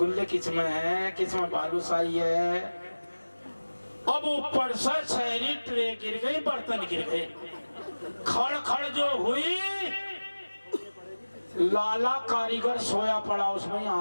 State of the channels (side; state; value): both; inverted; correlation -1.00